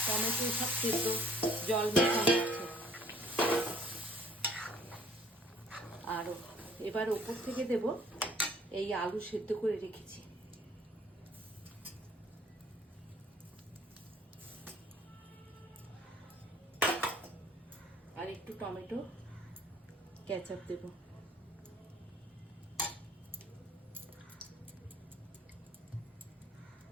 টমেটো সব সেদ্ধ জল মেশানো আছে। আর এবার ওপর থেকে দেব এই আলু সেদ্ধ করে রেখেছি। আর একটু টমেটো কেচাপ দেব।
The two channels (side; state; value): both; normal; correlation 0.57